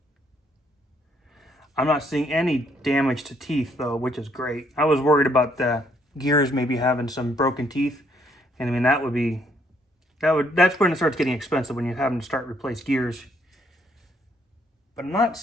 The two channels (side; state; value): both; normal; correlation 0.69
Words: I'm not seeing any damage to teeth though, which is great. I was worried about the gears maybe having some broken teeth, and I mean that's when it starts getting expensive, when you're having to start replace gears. But I'm not